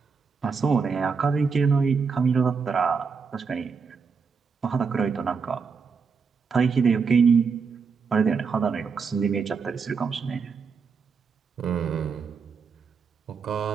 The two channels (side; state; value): left; quieter; 5.4 dB